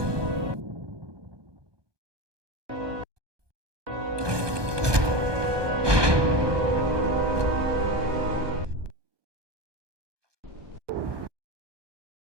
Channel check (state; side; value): late; left; 1.2 ms